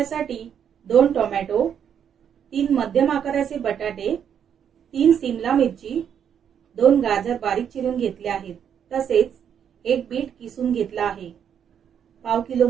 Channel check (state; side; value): quieter; left; 8.4 dB